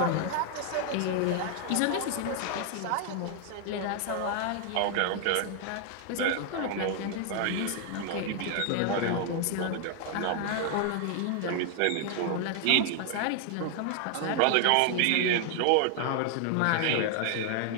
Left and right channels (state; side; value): different; both; correlation 0.00